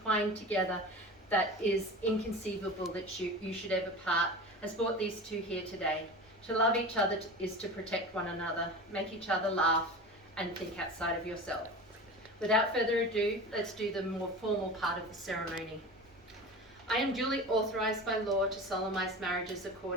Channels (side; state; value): right; noise; rumble, 29 dB below the sound